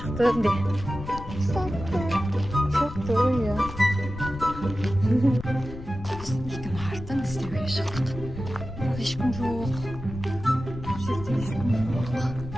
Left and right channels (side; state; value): left; noise; rumble, 12 dB below the sound